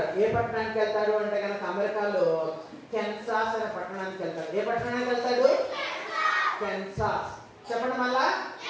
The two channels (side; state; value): both; identical; correlation 1.00